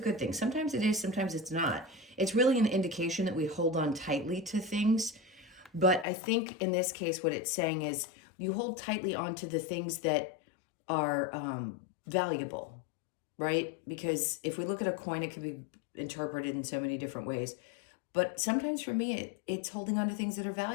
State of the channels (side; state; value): right; drops out; at 6.1 s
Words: thing. Sometimes it is, sometimes it's not. It's really an indication that we hold on tightly to things. But I think in this case, what it's saying is you hold tightly onto the things that are valuable, right? Because if we look at a coin, it can be interpreted in so many different ways. But sometimes for me, it's holding on to things that are